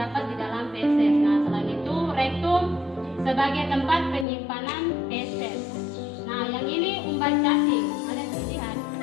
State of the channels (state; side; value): drops out; right; at 4.2 s